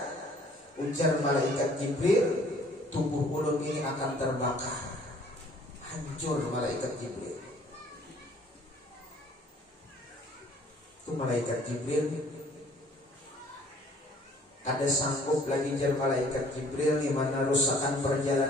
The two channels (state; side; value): normal; both; correlation 0.57